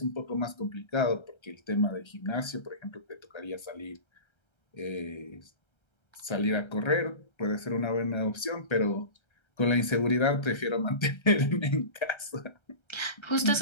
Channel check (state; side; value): late; right; 1.3 ms